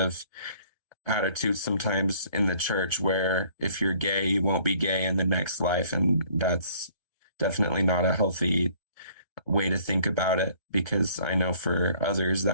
attitude sometimes in the church where if you're gay, you won't be gay in the next life. And that's definitely not a healthy way to think about it, because I know for others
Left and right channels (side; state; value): left; late; 1.3 ms